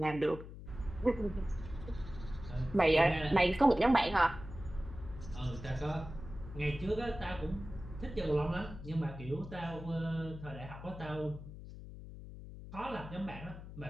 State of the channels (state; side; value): noise; left; hum, 12 dB below the sound